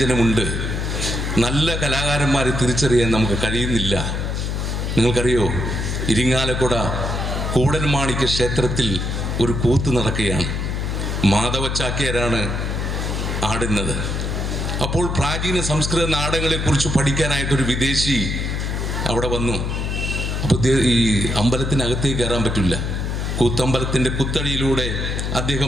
നല്ല കലാകാരന്മാരെ തിരിച്ചറിയാൻ നമുക്ക് കഴിയുന്നില്ല. നിങ്ങൾക്കറിയോ, ഇരിങ്ങാലക്കുട കൂടൽമാണിക്യ ക്ഷേത്രത്തിൽ ഒരു കൂത്ത് നടക്കുകയാണ്. മാധവ ചാക്യാരാണ് ആടുന്നത്. അപ്പോൾ പ്രാചീന സംസ്കൃത നാടകങ്ങളെക്കുറിച്ച് പഠിക്കാനായിട്ടൊരു വിദേശി അവിടെ വന്നു. അപ്പോൾ ഈ അമ്പലത്തിനകത്തേക്ക് കയറാൻ പറ്റില്ല. കൂത്തമ്പലത്തിൻ്റെ കുത്തടിയിലൂടെ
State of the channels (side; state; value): left; noise; hum, 1 dB below the sound